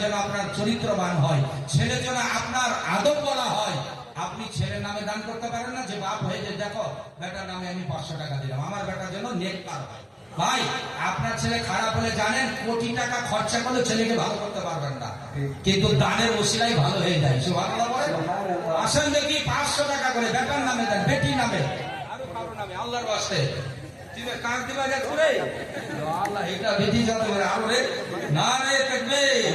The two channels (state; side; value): identical; both; correlation 1.00